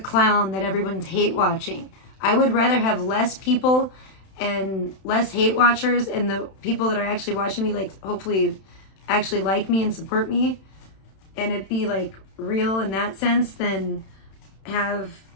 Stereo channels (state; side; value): late; right; 31 ms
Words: clown that everyone's hate watching. I would rather have less people and less hate watchers, and the people that are actually watching me, like, hopefully actually like me and support me, and it be like real in that sense, than have